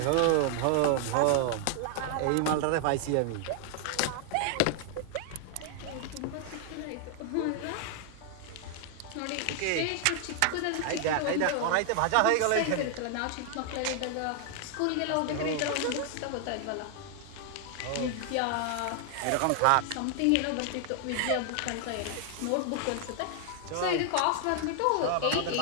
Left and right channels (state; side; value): different; both; correlation 0.00